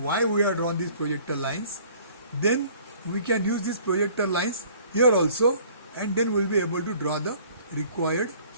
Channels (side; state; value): both; inverted; correlation -0.53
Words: we have drawn these projector lines, then we can use these projector lines here also, and then we'll be able to draw the required